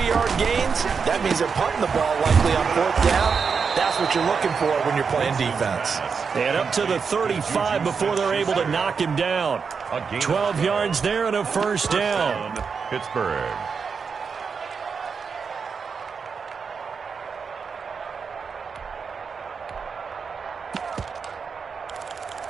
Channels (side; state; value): left; quieter; 5.7 dB